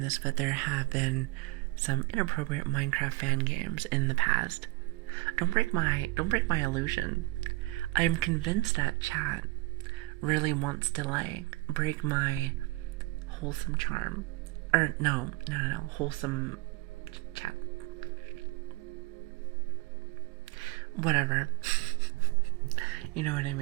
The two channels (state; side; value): quieter; left; 23.9 dB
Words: this, but there have been some inappropriate Minecraft fan games in the past. Don't break my illusion. I am convinced that chat really wants to like break my wholesome charm. Or no, wholesome chat. Whatever. You know what I